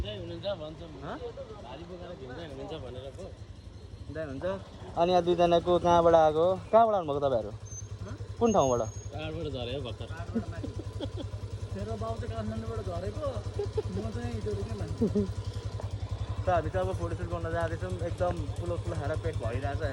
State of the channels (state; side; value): identical; both; correlation 1.00